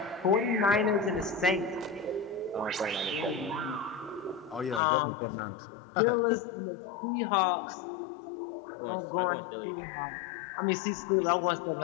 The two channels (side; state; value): right; drops out; at 4.8 s